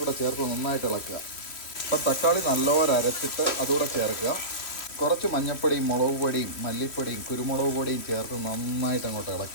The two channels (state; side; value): late; right; 3.0 ms